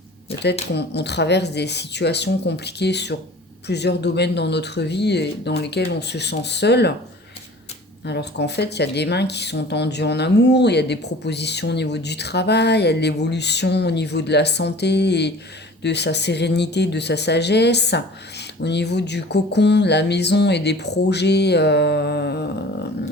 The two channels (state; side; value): normal; both; correlation 0.44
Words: Peut-être qu'on traverse des situations compliquées sur plusieurs domaines dans notre vie et dans lesquels on se sent seul. Alors qu'en fait, il y a des mains qui sont tendues en amour, il y a des propositions au niveau du travail, il y a de l'évolution au niveau de la santé et de sa sérénité, de sa sagesse. Au niveau du cocon, de la maison et des projets